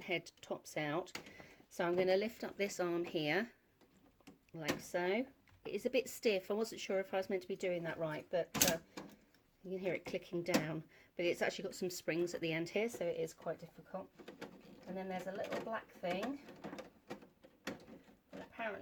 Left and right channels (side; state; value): both; identical; correlation 1.00